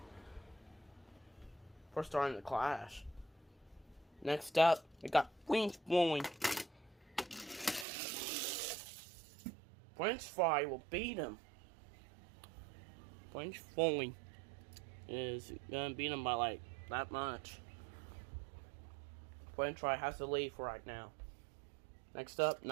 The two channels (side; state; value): left; drops out; at 7.9 s